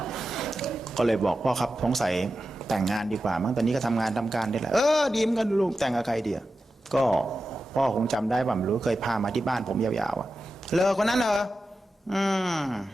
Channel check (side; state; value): both; normal; correlation 0.92